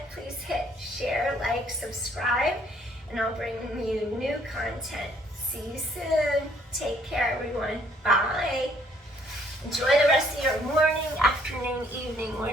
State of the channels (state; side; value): normal; both; correlation 0.64